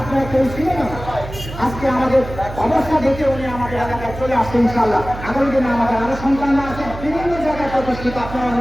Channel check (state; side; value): noise; right; hum, 11 dB below the sound